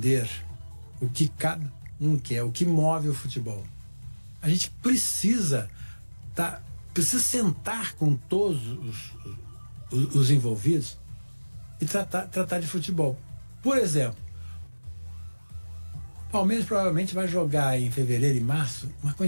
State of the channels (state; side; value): inverted; both; correlation -1.00